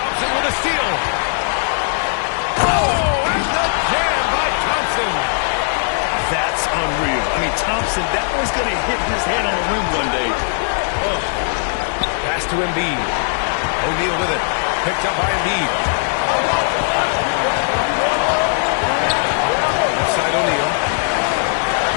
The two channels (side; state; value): right; silent; digital silence